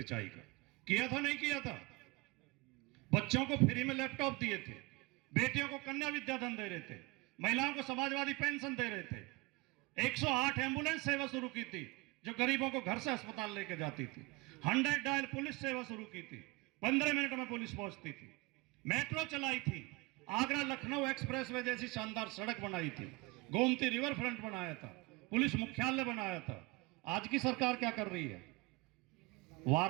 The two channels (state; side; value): quieter; left; 23.6 dB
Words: का किया था, नहीं किया था? बच्चों को फ्री में लैपटॉप दिए थे, बेटियों को कन्या विद्याधन दे रहे थे, महिलाओं को समाजवादी पेंशन दे रहे थे, 108 एम्बुलेंस सेवा शुरू की थी जो गरीबों को घर से अस्पताल लेकर जाती थी, 100 डायल पुलिस सेवा शुरू की थी, 15 मिनट में पुलिस पहुंचती थी, मेट्रो चलाई थी, आगरा लखनऊ एक्सप्रेसवे जैसी शानदार सड़क बनाई थी, गोमती रिवर फ्रंट बनाया था, पुलिस मुख्यालय बनाया था। आज की सरकार क्या कर रही है?